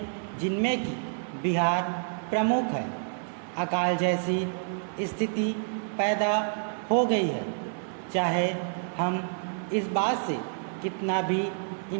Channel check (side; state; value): left; silent; 59 dB below the other